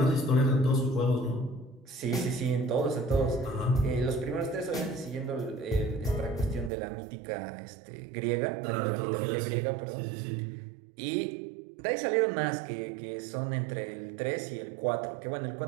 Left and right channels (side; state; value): left; drops out; at 6.7 s